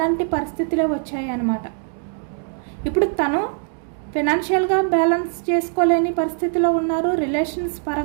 పరిస్థితులే వచ్చాయి అన్నమాట. ఇప్పుడు తను ఫినాన్షియల్గా బ్యాలెన్స్ చేసుకోలేని పరిస్థితిలో ఉన్నారు. రిలేషన్స్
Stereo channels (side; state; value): left; silent; 59 dB below the other